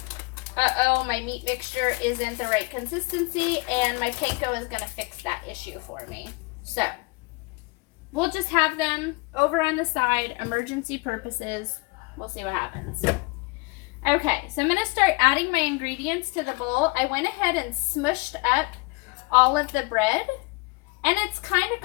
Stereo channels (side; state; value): right; quieter; 27.2 dB